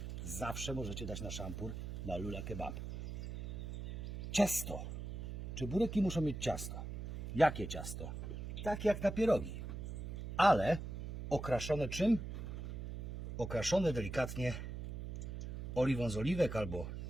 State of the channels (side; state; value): right; noise; hum, 7 dB below the sound